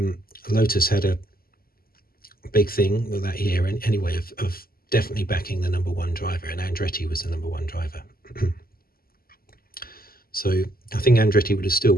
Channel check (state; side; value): late; right; 0.43 ms